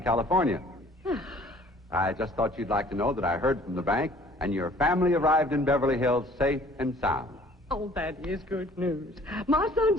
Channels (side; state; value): both; normal; correlation 0.54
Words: California. I just thought you'd like to know that I heard from the bank, and your family arrived in Beverly Hills safe and sound. Oh, that is good news. My son